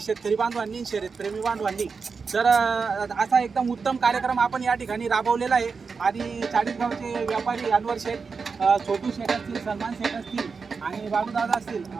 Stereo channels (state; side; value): quieter; left; 5.1 dB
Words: शेतकरी बांधवांनी, शर्यतप्रेमी बांधवांनी. तर असा एकदम उत्तम कार्यक्रम आपण या ठिकाणी राबवलेला आहे. आणि चाळीसगावचे व्यापारी अनवर शेठ, छोटू शेठ असतील, सलमान शेठ असतील आणि बाबूदादा असतील,